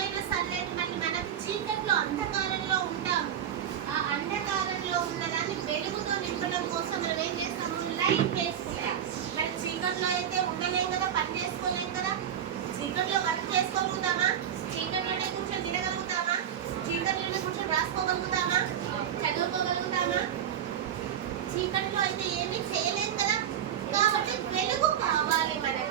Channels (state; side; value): quieter; left; 9.5 dB